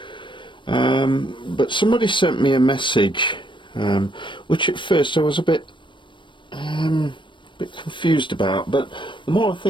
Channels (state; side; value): late; right; 0.24 ms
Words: But somebody sent me a message, which at first I was a bit confused about, but the more I